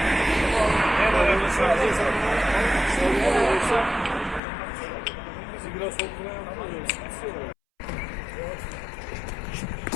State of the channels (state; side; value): drops out; right; at 4.4 s